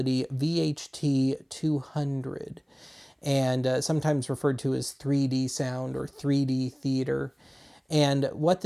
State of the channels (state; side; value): identical; both; correlation 1.00